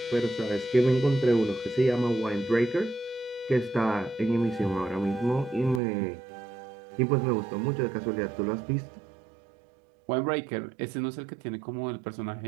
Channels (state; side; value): drops out; left; at 5.8 s